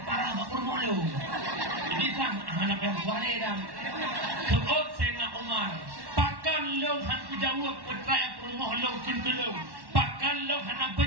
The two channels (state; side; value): late; left; 1.1 ms